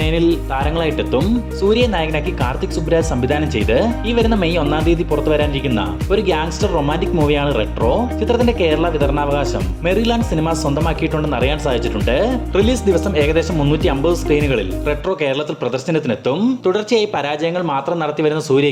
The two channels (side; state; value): both; identical; correlation 1.00